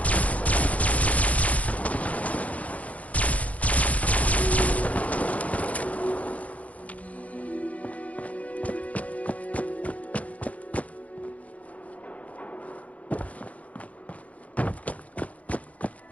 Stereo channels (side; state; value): right; late; 0.067 ms